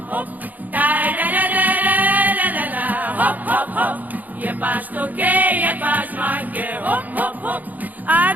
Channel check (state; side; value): late; left; 0.081 ms